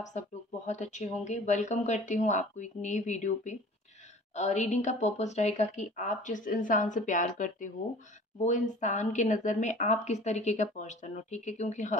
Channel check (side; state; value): both; normal; correlation 0.45